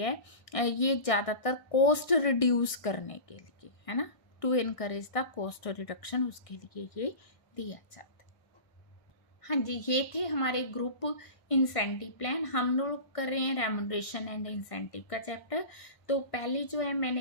ये ज़्यादातर कॉस्ट रिड्यूस करने के लिए है ना, to encourage the cost reduction, उसके लिए ये दिया जाता है। हाँ जी, ये थे हमारे ग्रुप इंसेंटिव प्लान। हम लोग कर रहे हैं रेम्यूनरेशन एंड इंसेंटिव का चैप्टर। तो पहले जो है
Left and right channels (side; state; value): right; late; 1.6 ms